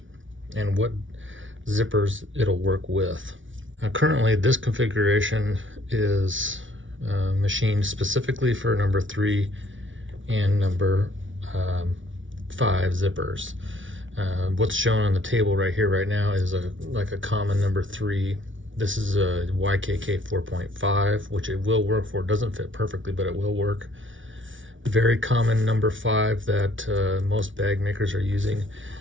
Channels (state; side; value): late; left; 0.56 ms